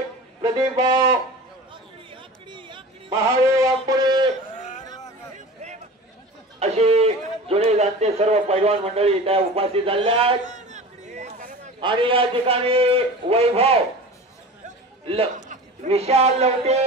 प्रदीप भाऊ महादेव वाघमोडे अशी जुने जाणते सर्व पैलवान मंडळी त्या उपस्थित झालेल्या आहेत आणि या ठिकाणी वैभव विशाल लवटे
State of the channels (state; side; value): normal; both; correlation 0.36